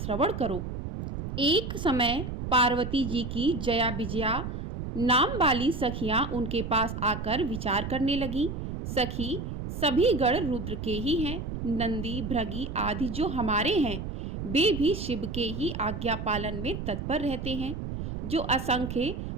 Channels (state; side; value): noise; right; rumble, 6 dB below the sound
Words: करो। एक समय पार्वती जी की जया विजया नाम वाली सखियां उनके पास आकर विचार करने लगी। सखी, सभी गण रुद्र के ही हैं। नंदी, भृगि आदि जो हमारे हैं, वे भी शिव के ही आज्ञा पालन में तत्पर रहते हैं। जो असंख्य